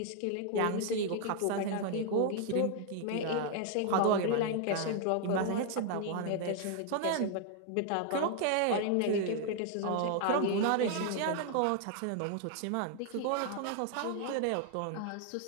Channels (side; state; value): both; different; correlation 0.00